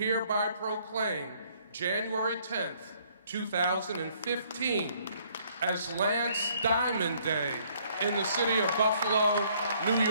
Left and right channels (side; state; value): both; inverted; correlation -0.64